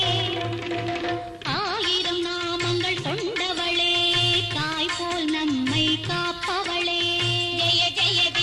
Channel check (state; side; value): identical; both; correlation 1.00